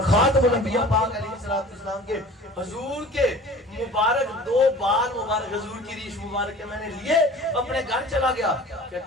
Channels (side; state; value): both; normal; correlation 0.43